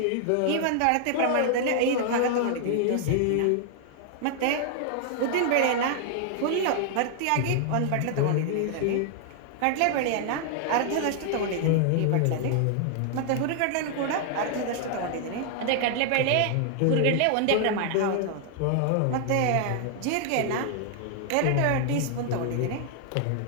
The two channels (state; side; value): different; both; correlation 0.00